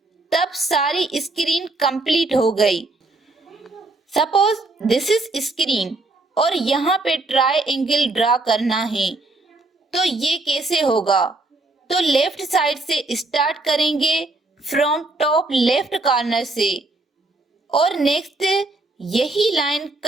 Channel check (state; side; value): quieter; left; 3.1 dB